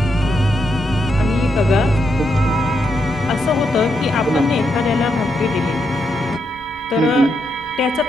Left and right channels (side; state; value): both; normal; correlation 0.81